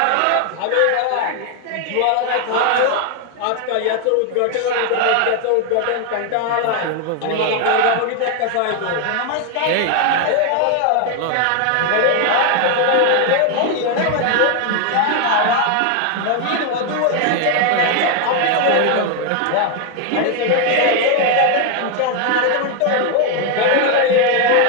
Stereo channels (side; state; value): both; different; correlation 0.01